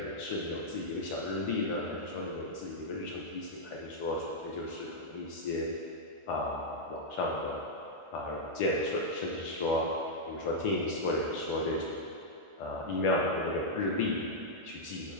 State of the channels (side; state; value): left; late; 1.4 ms